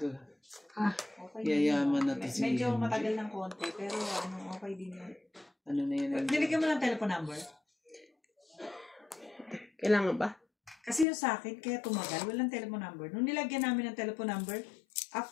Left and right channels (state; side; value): drops out; right; at 11.1 s